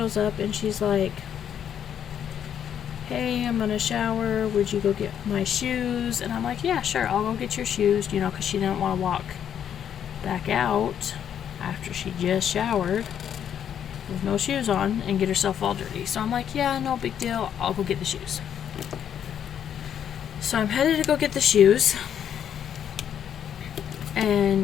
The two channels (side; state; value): right; quieter; 9.1 dB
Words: up and she's like, hey, I'm gonna shower, would you go get my shoes? And I'm like, yeah, sure, I'll go get your shoes, you know, because she didn't want to walk back out after she just showered with no shoes on and get herself all dirty. So I'm like, yeah, no big deal, I'll go get the shoes. So I'm headed to go get the shoes,